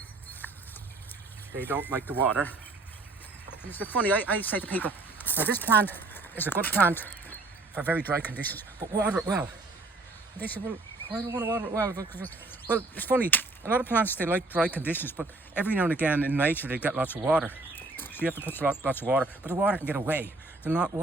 they don't like the water. And it's funny, I say to people, now this plant is a good plant for very dry conditions, but water it well. And they say, well, why do I want to water it well? Well, it's funny, a lot of plants, they like dry conditions, but every now and again in nature they get lots of water. So you have to put lots of water, but the water can get away.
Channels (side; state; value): left; quieter; 3.3 dB